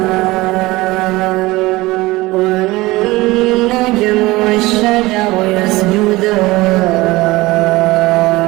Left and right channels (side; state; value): left; quieter; 20.2 dB